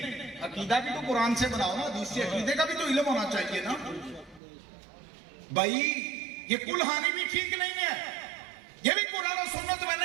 عقیدہ بھی تو قرآن سے بناؤ نا, حدیث سے. عقیدے کا بھی تو علم ہونا چاہیے نا بھائی. یہ کل خوانی بھی ٹھیک نہیں ہے, یہ بھی قرآن و سنت میں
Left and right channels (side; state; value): left; drops out; at 4.4 s